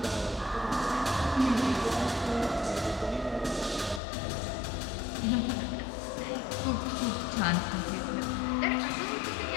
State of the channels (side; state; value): right; drops out; at 4.0 s